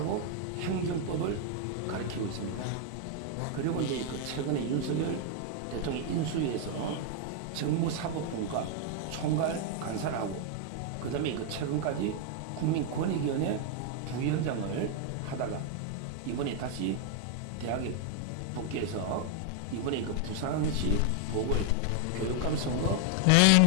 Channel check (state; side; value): different; both; correlation 0.00